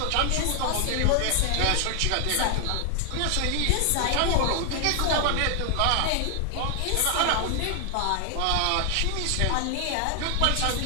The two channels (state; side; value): different; both; correlation 0.00